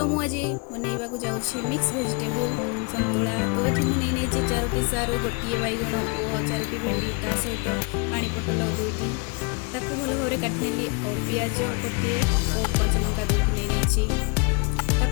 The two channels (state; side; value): quieter; right; 32.1 dB